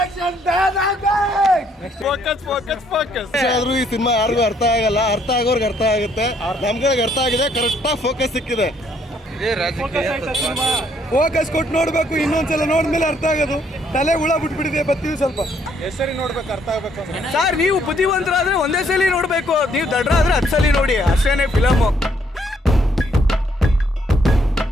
ಆದ್ರೂ ಈ ಸಿನಿಮಾ ಯಾರಿಗೂ ಅರ್ಥ ಆಗಲ್ಲ, ಅರ್ಥ ಆಗೋರ್ಗೆ ಅರ್ಥ ಆಗುತ್ತೆ. ನಮ್ಗಳಿಗೆ ಅರ್ಥ ಆಗಿದೆ, ಕರೆಕ್ಟಾಗಿ ಫೋಕಸ್ ಸಿಕ್ಕಿದೆ. ಫೋಕಸ್ ಕೊಟ್ಟು ನೋಡ್ಬೇಕು, ಇನ್ನೊಂದ್ಸಲ ನೋಡಿದ್ಮೇಲೆ ಅರ್ಥ ಆಗೋದು. ತಲೆ ಹುಳ ಬಿಟ್ಬಿಟ್ಟಿದೆ, ಬರ್ತೀವಿ ಸ್ವಲ್ಪ ಹೆಸರಿ ನೋಡ್ಬೇಕು, ಅರ್ಥ ಆಗ್ಬೇಕು. ಸರ್ ನೀವು ಬುದ್ಧಿವಂತರಾದ್ರೆ ಒಂದೇ ಸಲ ನೋಡ್ಬೇಕು, ನೀವು ದಡ್ರಾದ್ರೆ 10 ಸಲ ನೋಡಿ, ಅಷ್ಟೇನೆ ಫಿಲಮು.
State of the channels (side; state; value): both; normal; correlation 0.68